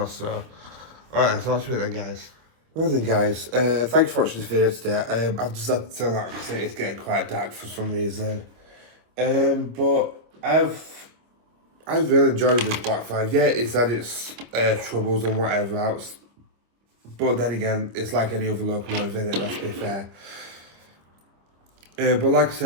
so. Alright, so that's it then, guys. Well then, guys, thanks for watching this video today. I've just had to turn that because it's getting quite dark for some reason. But I've really enjoyed this Black 5. Yeah, it's had its troubles and whatever else. But then again, it's like any other locomotive in it, let's be fair. But like I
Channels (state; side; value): late; left; 25 ms